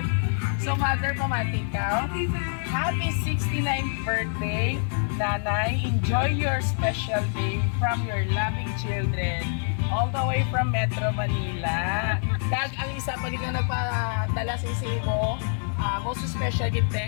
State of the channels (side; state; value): right; silent; 61 dB below the other